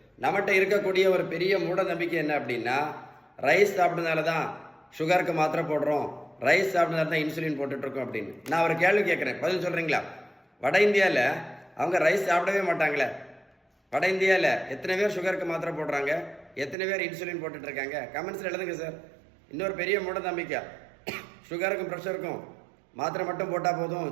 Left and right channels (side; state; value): left; drops out; at 16.8 s